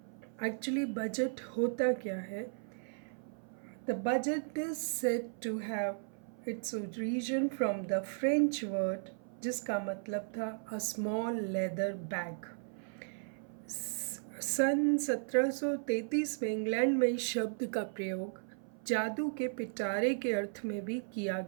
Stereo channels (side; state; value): left; silent; 54 dB below the other